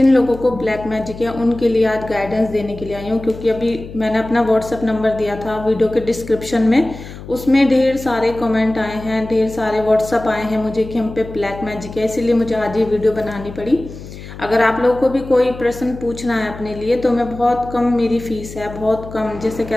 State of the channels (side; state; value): left; noise; hum, 14 dB below the sound